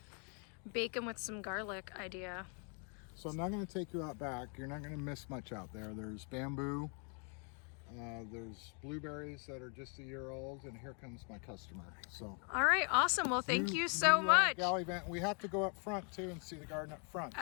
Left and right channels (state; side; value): quieter; right; 38.9 dB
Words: bacon with some garlic idea. So I'm not going to take you out back. You're not going to miss much out there. There's bamboo. There's blueberries that are just a year old, and here comes my customer. So. All right, awesome. Well, thank you so much. Galley vent. We have to go up front too and see the garden up front.